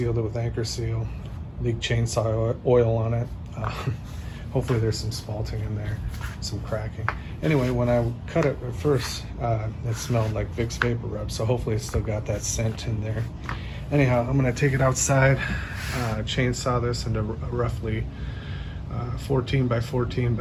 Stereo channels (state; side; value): identical; both; correlation 1.00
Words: it with anchor seal, leaked chainsaw oil on it. Hopefully there's some spalting in there, some cracking. Anyway, when I cut it at first, it smelled like Vick's Vapor Rub, so hopefully it's still got that scent in there. Anyhow, I'm gonna take it outside, chainsaw this into a roughly 14 by 14